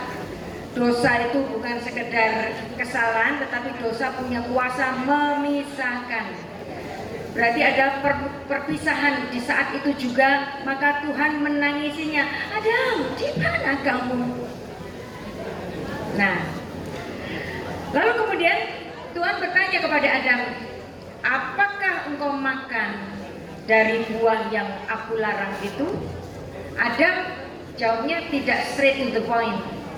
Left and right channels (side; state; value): both; identical; correlation 1.00